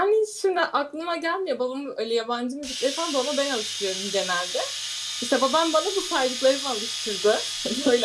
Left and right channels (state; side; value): identical; both; correlation 1.00